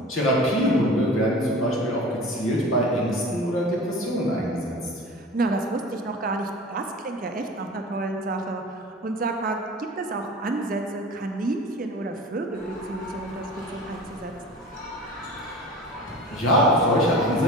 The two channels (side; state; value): both; normal; correlation 0.38